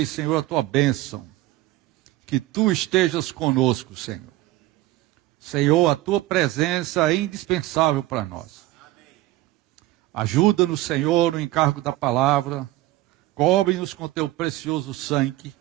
Senhor, a tua bênção. Que tu estejas conosco, Senhor. Senhor, a tua presença é indispensável para nós. Ajuda-nos, Senhor, no encargo da palavra. Cobre-nos com teu precioso sangue.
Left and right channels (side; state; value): left; quieter; 16.9 dB